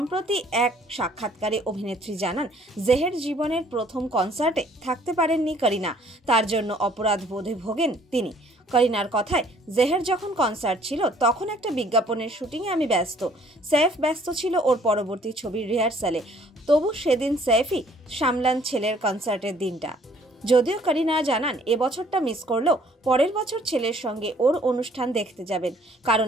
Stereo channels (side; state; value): both; normal; correlation 0.59